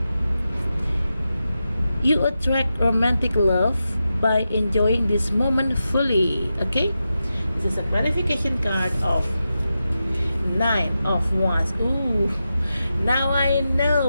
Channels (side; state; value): both; inverted; correlation -0.90